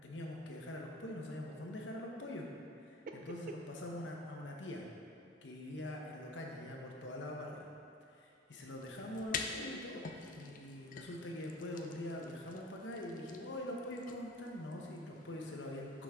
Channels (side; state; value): both; normal; correlation 0.41